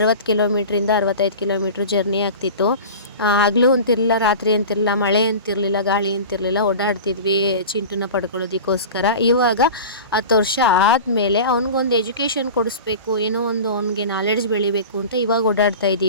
ಕಿಲೋಮೀಟ್ರಿಂದ 65 ಕಿಲೋಮೀಟ್ರ್ ಜರ್ನಿ ಆಗ್ತಿತ್ತು. ಹಗಲು ಅಂತಿರಲಿಲ್ಲ, ರಾತ್ರಿ ಅಂತಿರಲಿಲ್ಲ, ಮಳೆ ಅಂತಿರಲಿಲ್ಲ, ಗಾಳಿ ಅಂತಿರಲಿಲ್ಲ, ಓಡಾಡ್ತಿದ್ವಿ ಚಿಂಟುನ ಪಡ್ಕೊಳ್ಳೋದಕ್ಕೋಸ್ಕರ. ಇವಾಗ 10 ವರ್ಷ ಆದಮೇಲೆ ಅವ್ನಿಗೊಂದು ಎಜುಕೇಷನ್ ಕೊಡಿಸ್ಬೇಕು, ಏನೋ ಒಂದು ಅವ್ನಿಗೆ ನಾಲೆಡ್ಜ್ ಬೆಳಿಬೇಕು ಅಂತ ಇವಾಗ ಓಡಾಡ್ತಾ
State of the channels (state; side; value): inverted; both; correlation -0.33